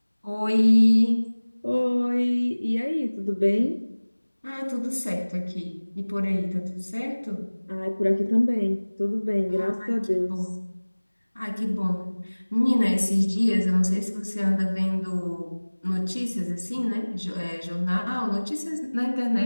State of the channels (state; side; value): inverted; both; correlation -1.00